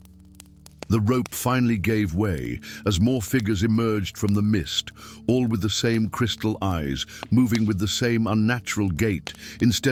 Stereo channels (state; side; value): identical; both; correlation 1.00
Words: The rope finally gave way as more figures emerged from the mist, all with the same crystal eyes, moving with the same unnatural gait.